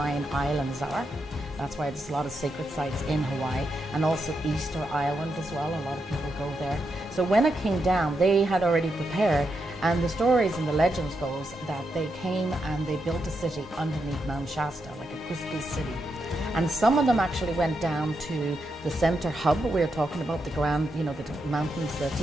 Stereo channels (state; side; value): normal; both; correlation 0.84